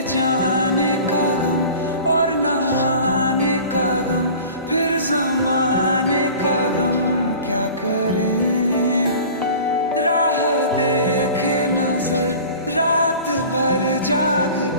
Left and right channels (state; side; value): inverted; both; correlation -0.41